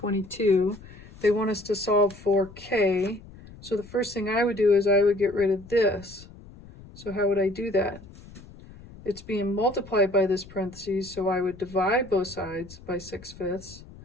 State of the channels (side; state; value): left; noise; rumble, 19 dB below the sound